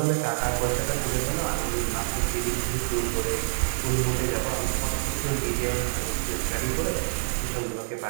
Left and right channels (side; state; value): left; silent; digital silence